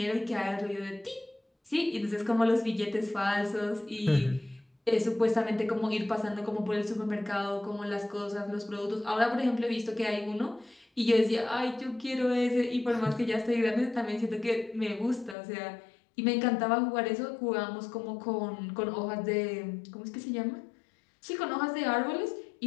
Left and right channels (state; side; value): drops out; right; at 15.4 s